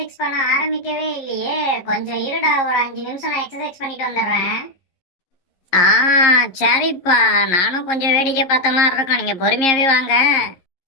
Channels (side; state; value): right; late; 11 ms